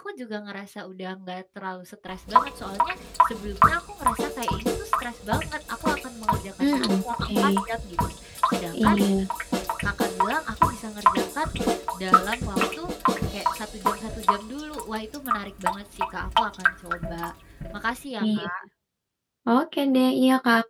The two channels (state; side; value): identical; both; correlation 1.00